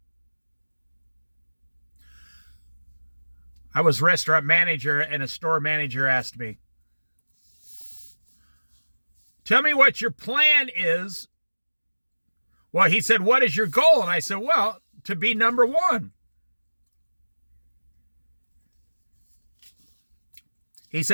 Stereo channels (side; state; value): both; inverted; correlation -1.00